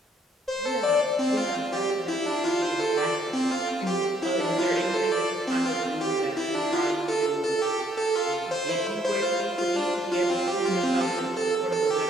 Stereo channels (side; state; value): both; normal; correlation 0.69